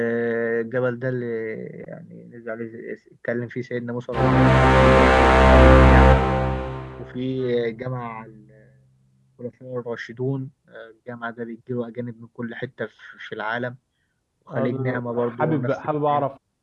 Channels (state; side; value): identical; both; correlation 1.00